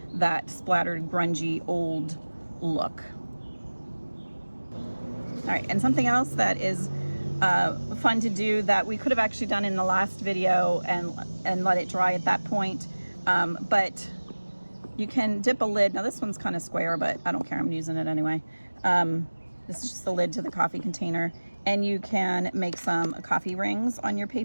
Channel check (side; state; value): both; inverted; correlation -1.00